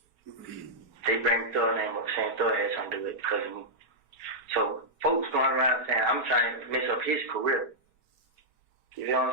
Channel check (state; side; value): late; left; 6.1 ms